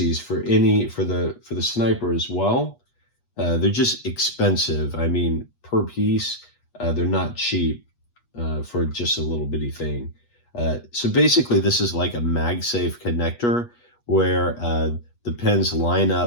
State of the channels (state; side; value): late; right; 8.3 ms